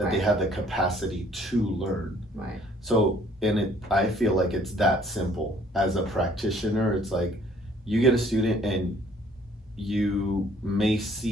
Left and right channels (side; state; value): both; normal; correlation 0.59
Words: they Right. have the capacity to learn. Right. So, I feel like it's that simple. As a practitioner, it's like you get a student and you may